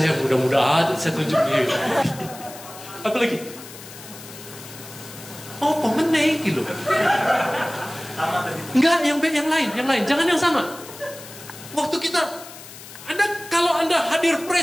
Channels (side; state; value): left; noise; hiss, 16 dB below the sound